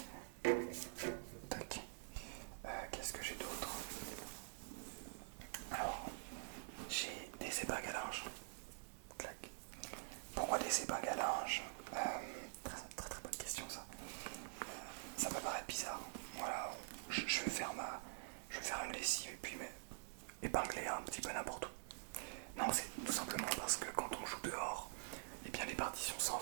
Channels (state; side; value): silent; left; digital silence